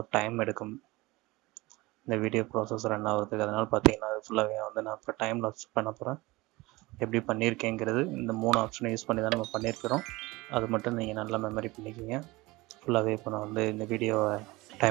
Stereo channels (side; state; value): left; quieter; 21.5 dB